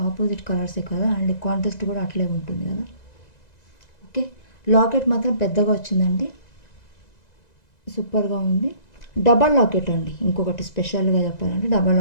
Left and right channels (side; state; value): right; late; 2.0 ms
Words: ఆపోజిట్ కలర్సే కదా, అండ్ కాంట్రాస్ట్ కూడా అట్లే ఉంటుంది కదా. ఓకే, లాకెట్ మాత్రం పెద్దగా వచ్చిందండి, సూపర్గా ఉంది. డబల్ లాకెట్ అండి, ఇంకొకటి స్పెషల్గా చెప్పాలంటే డబల్